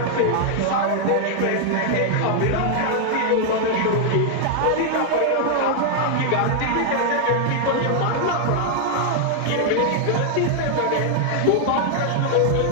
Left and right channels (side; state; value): both; different; correlation 0.00